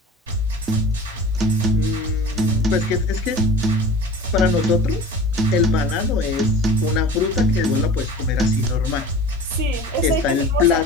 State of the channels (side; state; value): both; normal; correlation 0.40